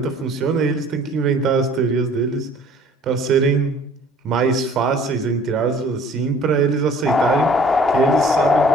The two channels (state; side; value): normal; both; correlation 0.53